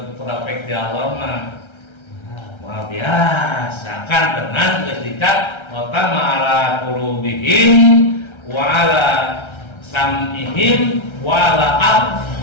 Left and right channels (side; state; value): right; late; 1.3 ms